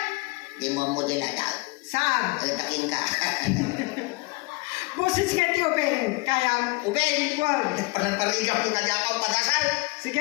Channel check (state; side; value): quieter; right; 27.0 dB